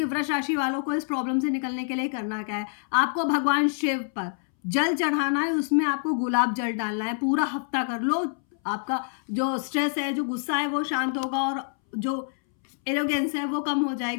वृष राशि वालों को इस प्रॉब्लम से निकलने के लिए करना क्या है। आपको भगवान शिव पर जल चढ़ाना है, उसमें आपको गुलाब जल डालना है। पूरा हफ्ता कर लो, आपका जो स्ट्रेस है, जो गुस्सा है वो शांत होगा और जो एरोगेंस है वो कम हो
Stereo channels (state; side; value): silent; right; 61 dB below the other